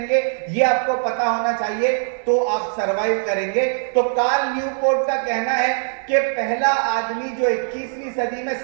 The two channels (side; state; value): left; silent; 65 dB below the other